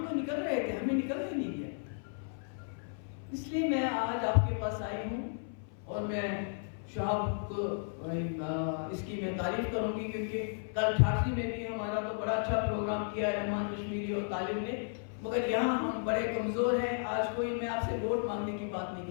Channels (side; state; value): right; silent; 55 dB below the other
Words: تو نکل رہے تھے، ہمیں نکلنے نہیں دیا۔ اس لیے میں آج آپ کے پاس آئی ہوں اور میں شہاب کو اس کی میں تعریف کروں گی، کیونکہ کل ٹھاٹھی میں بھی ہمارا تو بڑا اچھا پروگرام کیا ہے رحمان کشمیری اور طالب نے، مگر یہاں ہم بڑے کمزور ہیں۔ آج کوئی میں آپ سے ووٹ مانگنے کی بات نہیں